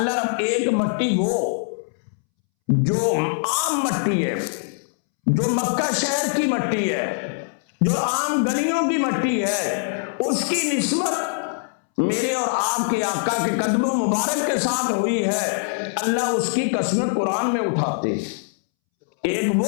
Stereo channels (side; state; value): right; silent; 64 dB below the other